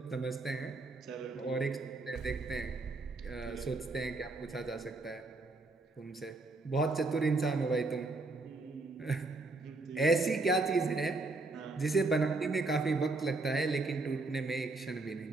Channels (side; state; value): left; quieter; 3.3 dB